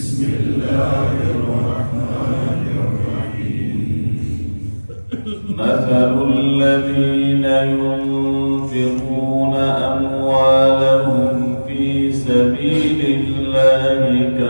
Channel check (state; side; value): inverted; both; correlation -1.00